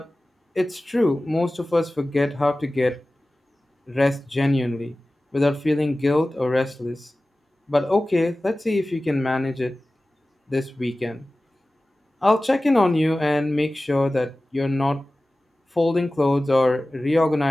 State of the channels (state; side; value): normal; both; correlation 0.97